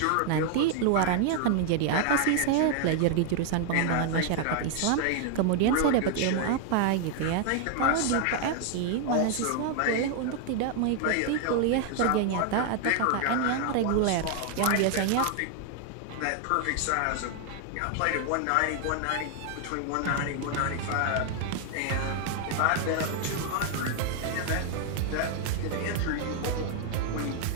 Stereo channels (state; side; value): different; both; correlation 0.00